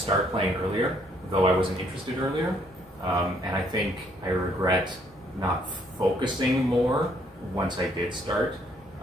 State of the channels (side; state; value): left; noise; rumble, 28 dB below the sound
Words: playing earlier, though I wasn't interested earlier. And I think I regret not focusing more once I did start.